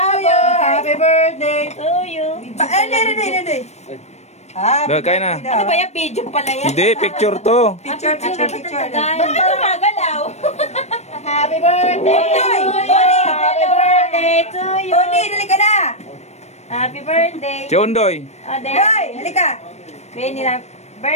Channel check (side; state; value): right; late; 0.32 ms